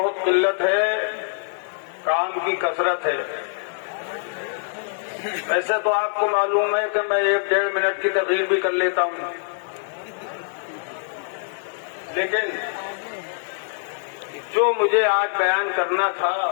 قلت ہے، کام کی کثرت ہے۔ ویسے تو آپ کو معلوم ہے کہ میں 1-1.5 منٹ کی تقریر بھی کر لیتا ہوں، لیکن جو مجھے آج بیان کرنا تھا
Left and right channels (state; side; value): silent; right; 63 dB below the other